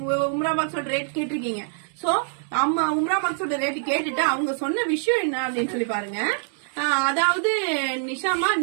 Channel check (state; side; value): silent; left; digital silence